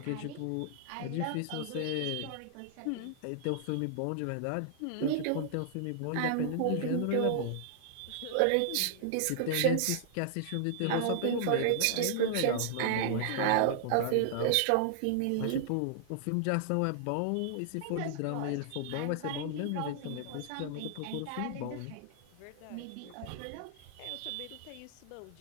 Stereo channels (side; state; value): both; different; correlation -0.01